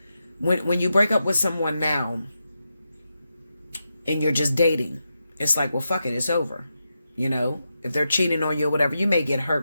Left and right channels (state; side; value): inverted; both; correlation -0.88